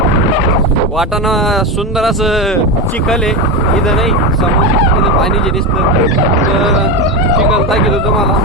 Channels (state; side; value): normal; both; correlation 0.16